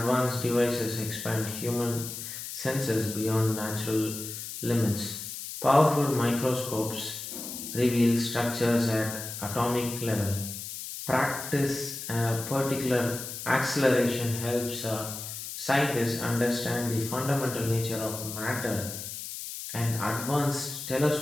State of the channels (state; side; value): noise; left; hiss, 8 dB below the sound